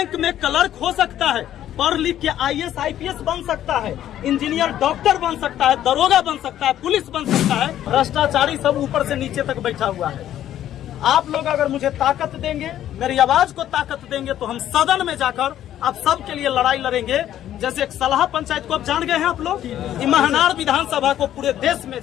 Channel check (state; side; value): quieter; right; 11.7 dB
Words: में क्लर्क हो सकता है, पढ़ लिख के IAS IPS बन सकता है, इंजीनियर डॉक्टर बन सकता है, दरोगा बन सकता है, पुलिस बन सकता है। भ्रष्टाचारी सब ऊपर से नीचे तक बैठा हुआ है। आप लोग अगर मुझे ताकत देंगे, मेरी आवाज को ताकत देंगे, तो हम सदन में जाकर आप सब के लिए लड़ाई लड़ेंगे। जैसे एक सलाह पंचायत को आप जान गए हैं आप लोग, महनार विधानसभा को पूरे देश में